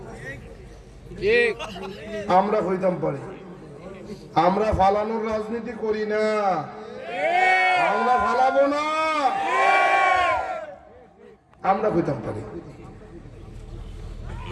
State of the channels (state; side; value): identical; both; correlation 1.00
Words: আমরা হইতাম পারি, আমরা ফালানোর রাজনীতি করি না, আমরা ফালাবো না, আমরা হইতাম পারি।